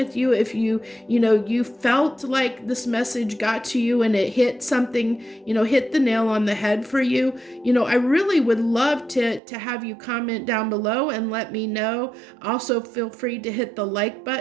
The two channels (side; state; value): left; drops out; at 9.4 s